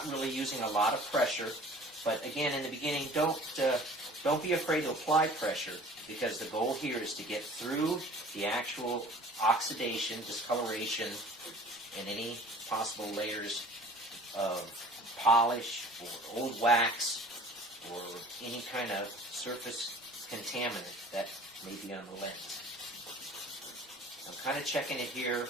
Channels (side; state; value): both; normal; correlation 0.47